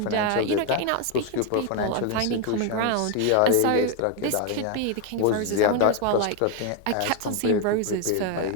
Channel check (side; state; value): both; different; correlation 0.01